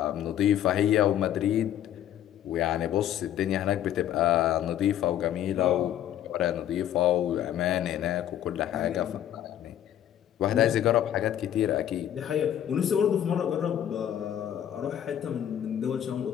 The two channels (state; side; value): quieter; right; 11.0 dB